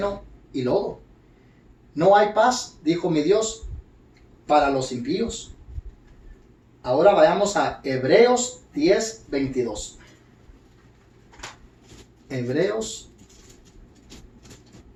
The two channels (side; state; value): both; identical; correlation 1.00